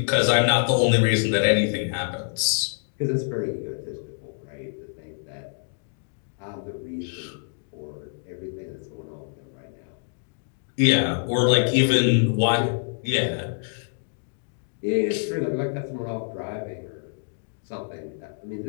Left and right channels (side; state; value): right; silent; digital silence